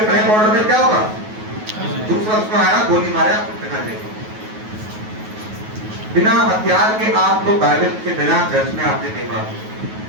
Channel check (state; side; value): late; left; 9.3 ms